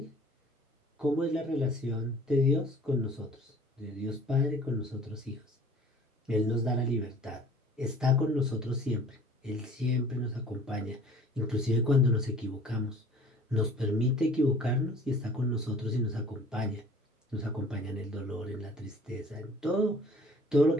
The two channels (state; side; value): normal; both; correlation 0.50